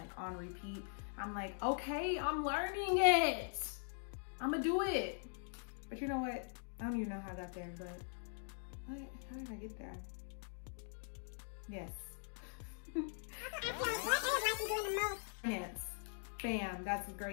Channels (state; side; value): silent; right; digital silence